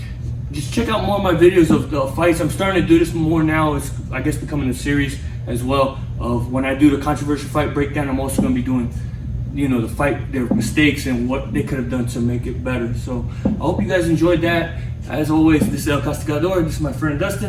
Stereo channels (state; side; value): identical; both; correlation 1.00